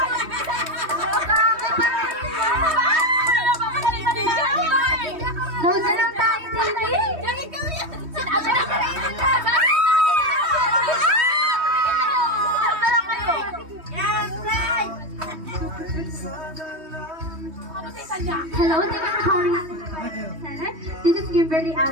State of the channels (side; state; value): left; late; 3.2 ms